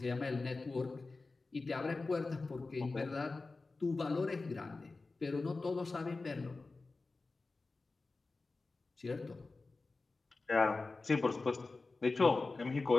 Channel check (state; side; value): quieter; right; 3.6 dB